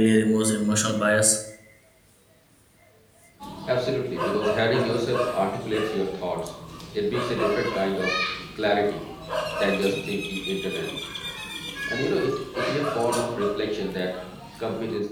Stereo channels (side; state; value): both; identical; correlation 1.00